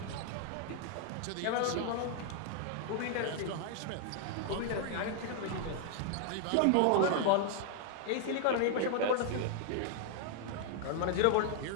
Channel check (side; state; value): both; different; correlation 0.00